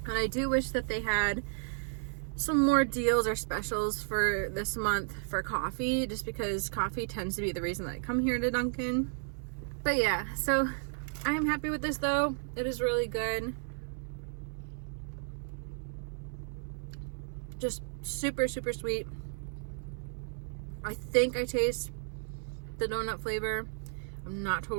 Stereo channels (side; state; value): left; silent; 55 dB below the other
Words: and I do wish that they had some more deals or specials for this month for coffee, just because coffee tends to be the reason that I come here to Dunkin. But yeah, so I am happy with this though. It is really good. Just super, super sweet. I think I taste the donut flavor. I'm not